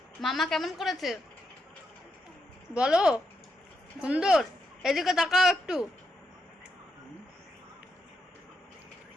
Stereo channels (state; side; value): normal; both; correlation 0.82